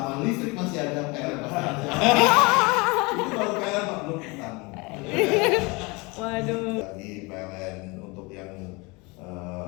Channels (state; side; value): quieter; right; 26.7 dB